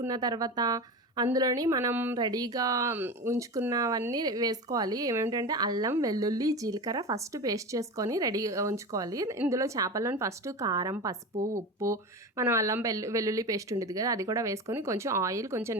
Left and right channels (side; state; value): both; normal; correlation 0.27